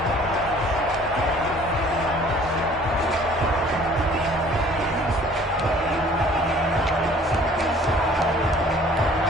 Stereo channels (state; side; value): normal; both; correlation 0.53